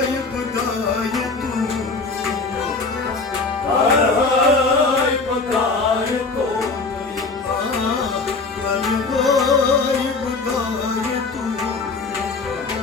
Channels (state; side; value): quieter; right; 4.0 dB